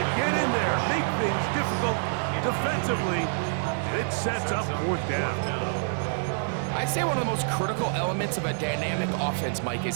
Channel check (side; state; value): left; silent; digital silence